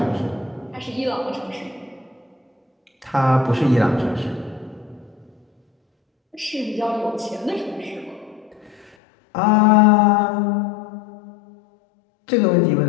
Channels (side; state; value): right; drops out; at 9.0 s